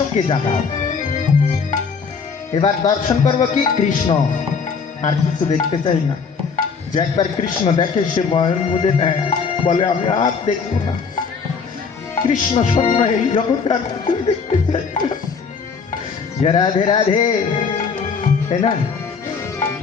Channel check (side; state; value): right; quieter; 5.5 dB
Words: জাগাও। এবার দর্শন করবো কি, কৃষ্ণ, আর কিছু দেখতে চাই না। যে একবার কৃষ্ণ দেখে সে মনের মধ্যে নেয়, বলে আমি আর দেখবো না, কৃষ্ণ স্বপ্ন এই জগতে আর কিছু দেখতে চাই না। রাধে রাধে, তাই না?